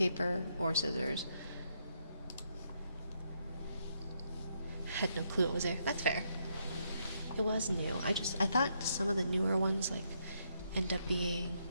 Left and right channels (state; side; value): inverted; both; correlation -0.77